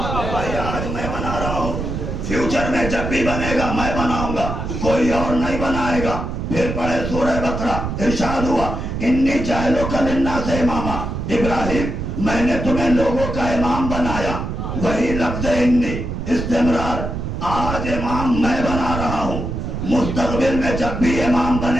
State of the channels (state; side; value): noise; right; rumble, 4 dB below the sound